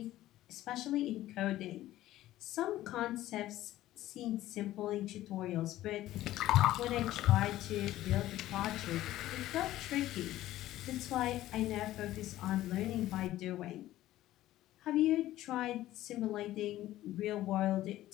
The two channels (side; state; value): right; quieter; 14.7 dB